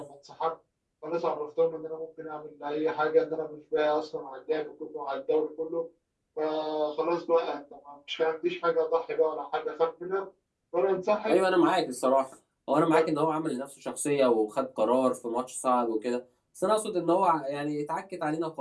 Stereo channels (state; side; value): identical; both; correlation 1.00